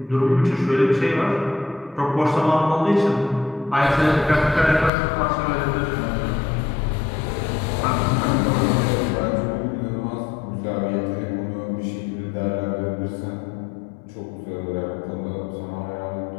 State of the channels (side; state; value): right; drops out; at 4.9 s